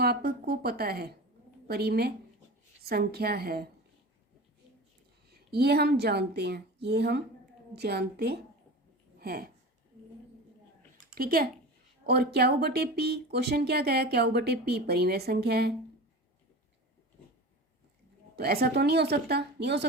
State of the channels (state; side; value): normal; both; correlation 0.32